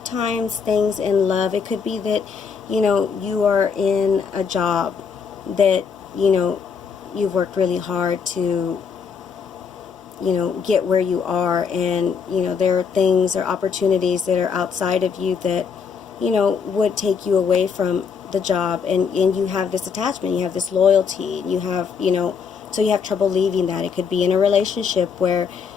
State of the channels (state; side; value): quieter; right; 6.2 dB